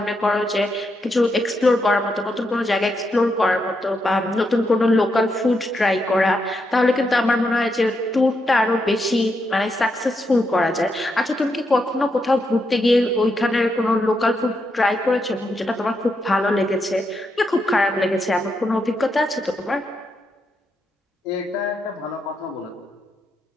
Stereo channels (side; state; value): both; normal; correlation 0.82